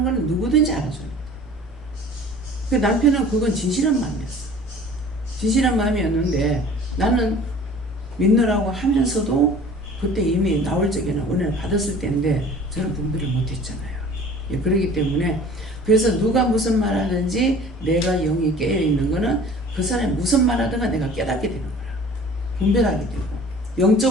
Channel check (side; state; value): both; normal; correlation 0.46